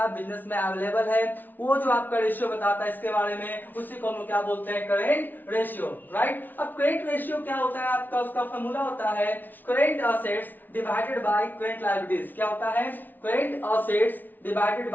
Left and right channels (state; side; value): late; right; 0.086 ms